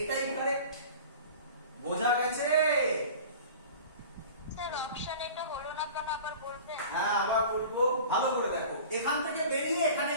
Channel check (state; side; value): inverted; both; correlation -0.40